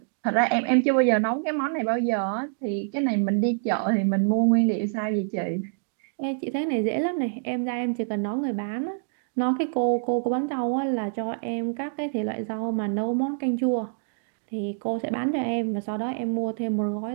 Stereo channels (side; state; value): left; silent; digital silence